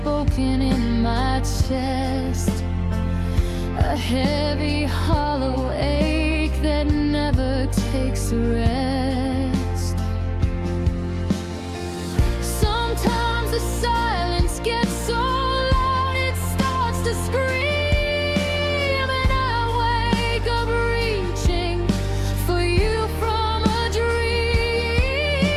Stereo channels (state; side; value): identical; both; correlation 1.00